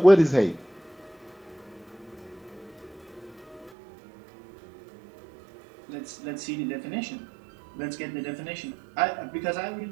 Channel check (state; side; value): drops out; left; at 3.7 s